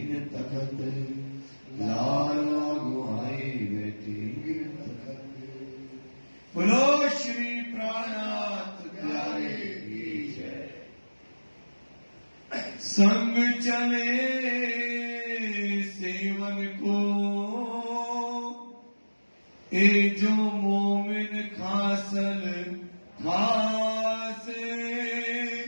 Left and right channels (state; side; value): inverted; both; correlation -1.00